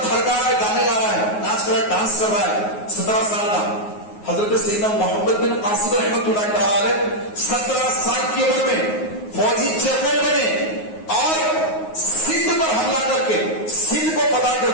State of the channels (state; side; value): late; right; 9.5 ms